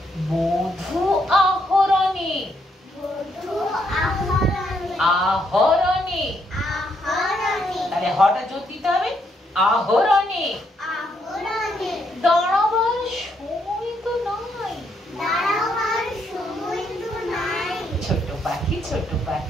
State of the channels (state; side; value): normal; both; correlation 0.75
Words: মধু আহরণে। আহরণে তাহলে হটা জোর দিতে হবে, আহরণে। দাঁড়াবার সময় তো নাই। ছোট পাখি ছোট